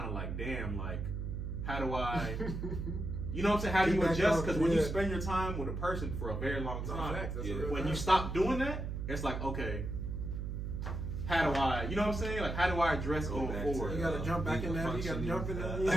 of like, damn, like, how do I, you know what I'm saying? How do you adjust? Because when you spend your time with a person for a very long time, when you stop doing that, it's like, okay, how do I, you know what I'm saying? Like, how do I address going forward? You gotta jump back in there. You gotta jump in there.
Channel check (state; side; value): noise; right; hum, 4 dB below the sound